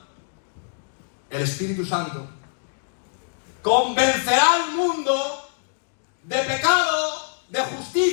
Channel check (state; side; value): silent; right; digital silence